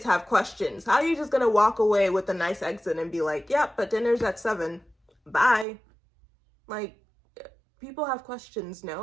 have questions. How are you just going to walk away with a nice exit and be like, yep, but dinner's at 7. Bye. Like, people have questions,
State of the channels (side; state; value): left; drops out; at 5.7 s